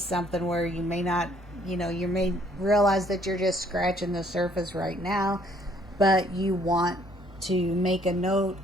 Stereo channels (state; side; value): normal; both; correlation 0.63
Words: something where you may not, you may realize that you're just scratching the surface right now, but you want to make a note